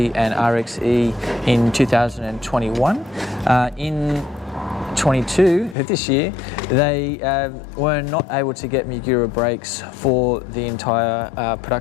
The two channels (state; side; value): drops out; right; at 5.8 s